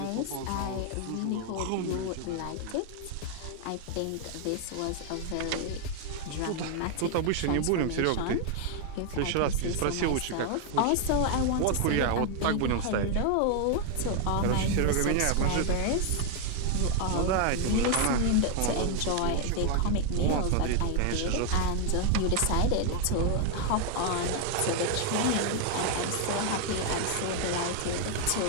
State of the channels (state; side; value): different; both; correlation 0.00